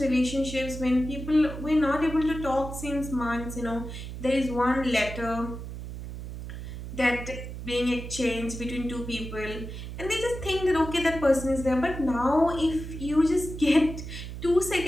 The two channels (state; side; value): noise; right; hum, 9 dB below the sound